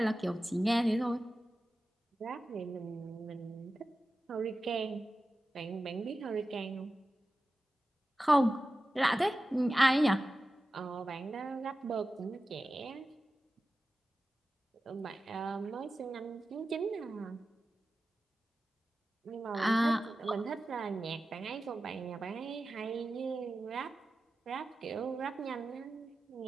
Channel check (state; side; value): normal; both; correlation 0.94